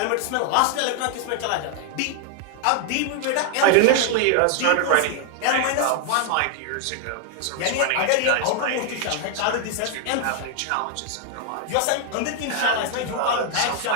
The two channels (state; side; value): different; both; correlation 0.00